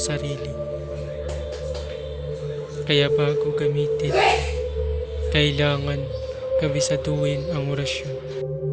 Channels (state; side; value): identical; both; correlation 1.00